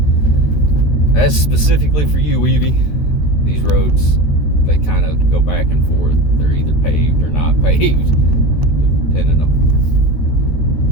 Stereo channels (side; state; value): right; late; 13 ms